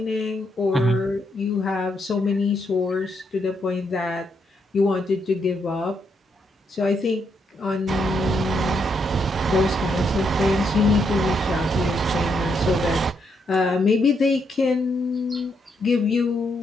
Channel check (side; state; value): both; normal; correlation 0.78